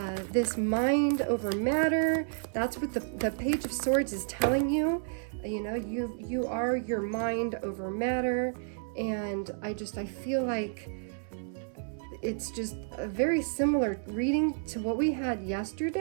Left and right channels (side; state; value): left; silent; 57 dB below the other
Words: This mind over matter, that's what the Page of Swords is telling you. You are your mind over matter, and I feel like it's just a very similar reading to what we had